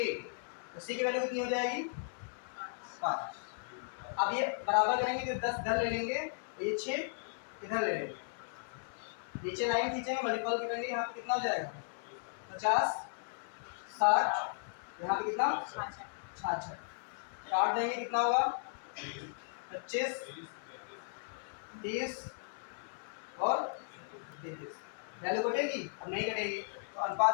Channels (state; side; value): silent; right; 54 dB below the other